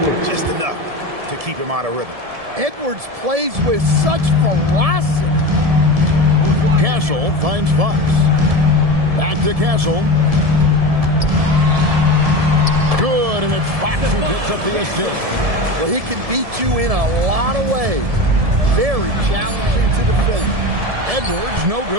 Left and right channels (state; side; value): late; left; 1.7 ms